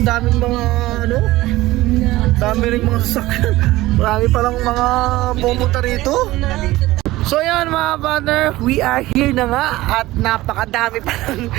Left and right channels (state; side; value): quieter; left; 17.7 dB